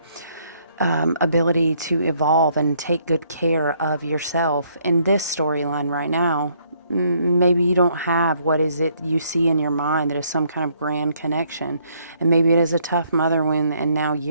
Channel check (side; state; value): both; inverted; correlation -0.68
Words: ability to evolve and take good care of yourself, in this storyline right now, maybe you don't have what is it you see in your mind that is some kind of grand connection. And maybe it is a tough mother wound, and now